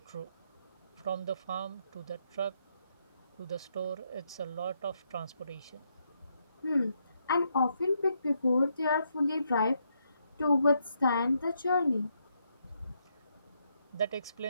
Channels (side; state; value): both; inverted; correlation -0.78